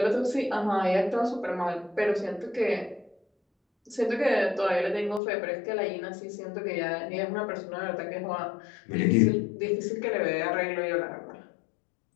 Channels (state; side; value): drops out; right; at 5.2 s